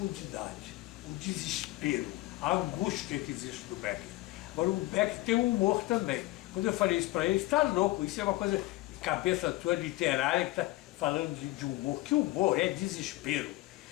o desespero, a angústia que existe do Beckett. Agora o Beckett tem um humor também. Quando eu falei isso para ele, está louco, isso é uma coisa de cabeça tua literária que está falando de humor. Que humor é desespero.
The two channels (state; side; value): quieter; right; 18.8 dB